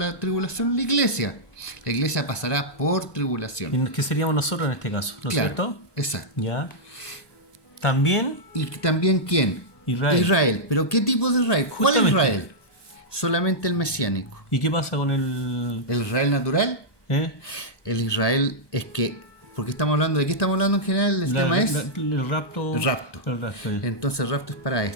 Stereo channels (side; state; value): right; late; 1.2 ms